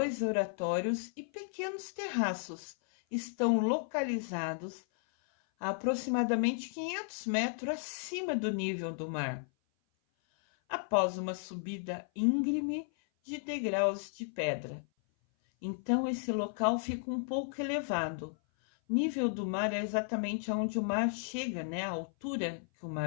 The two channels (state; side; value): silent; right; 55 dB below the other